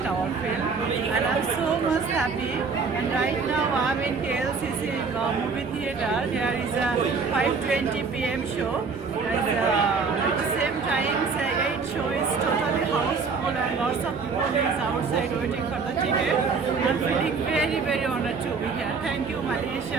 our film, and I'm so much happy. And right now I'm in KLCC movie theater. Here is a 5:20 p.m. show. At the same time, say 8 show is totally houseful and lots of people is outside waiting for the ticket. I'm feeling very, very honored to be here. Thank you,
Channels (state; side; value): quieter; left; 5.0 dB